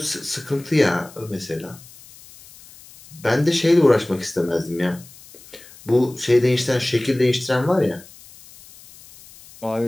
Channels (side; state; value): left; noise; hiss, 22 dB below the sound